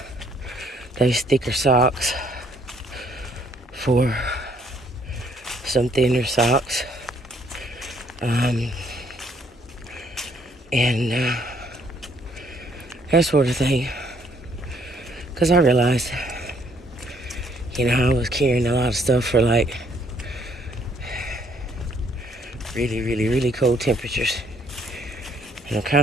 those thicker socks for some thinner socks. And that sort of thing. Because I realized, you know, I was carrying a lot of stuff for like really, really, really cold temperatures. And I'm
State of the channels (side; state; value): both; normal; correlation 0.66